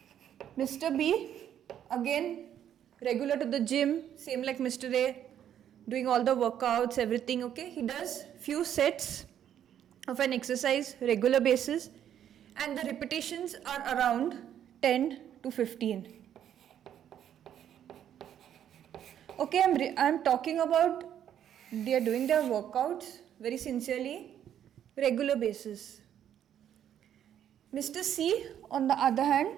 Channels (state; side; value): quieter; left; 10.0 dB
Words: Mr. B, again regular to the gym, same like Mr. A, doing all the workouts, everything, he does few sets of an exercise regular basis, and the repetitions are around 10 to 15. I'm talking about they are doing their workouts very sincerely, regular basis. Mr. C, on the other